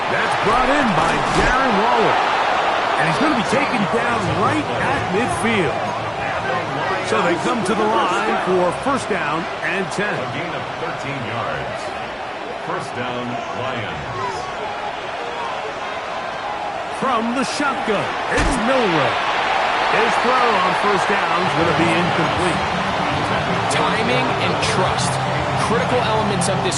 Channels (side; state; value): both; identical; correlation 1.00